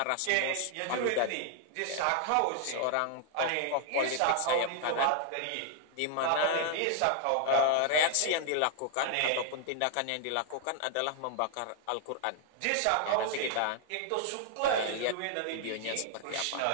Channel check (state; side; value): different; both; correlation 0.00